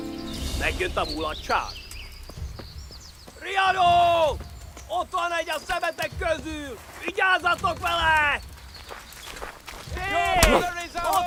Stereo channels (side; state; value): both; identical; correlation 1.00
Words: Megjött a mulatság. Riadó! Ott van egy a szemetek közül! Vigyázzatok vele! Hé!